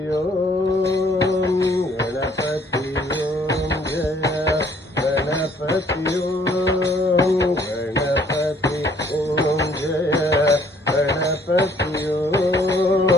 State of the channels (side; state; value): both; normal; correlation 0.61